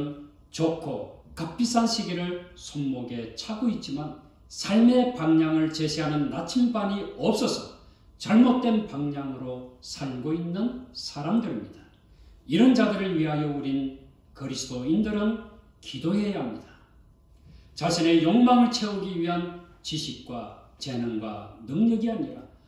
좋고 값비싼 시계를 손목에 차고 있지만 삶의 방향을 제시하는 나침반이 없어서 잘못된 방향으로 살고 있는 사람들입니다. 이런 자들을 위하여 우린 그리스도인들은 기도해야 합니다. 자신의 욕망을 채우기 위한 지식과 재능과 능력이 아니라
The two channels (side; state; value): both; identical; correlation 1.00